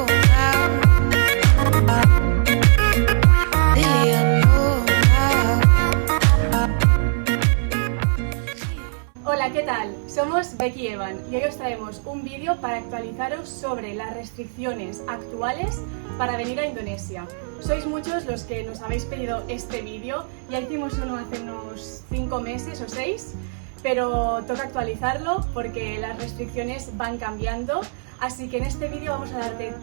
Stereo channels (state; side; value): silent; left; 65 dB below the other